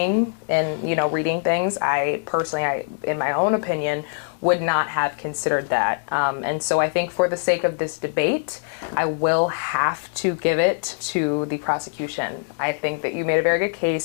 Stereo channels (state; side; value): silent; right; digital silence